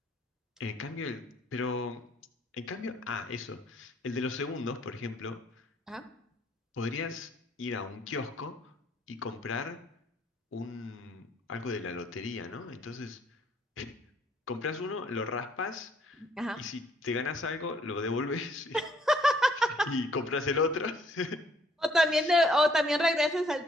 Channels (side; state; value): both; normal; correlation 0.64